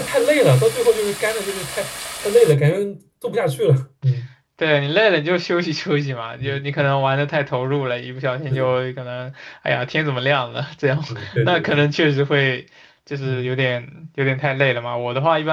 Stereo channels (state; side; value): identical; both; correlation 1.00